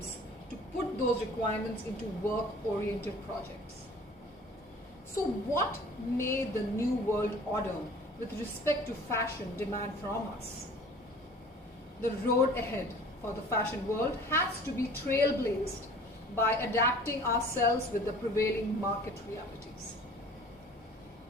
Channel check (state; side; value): noise; left; hum, 28 dB below the sound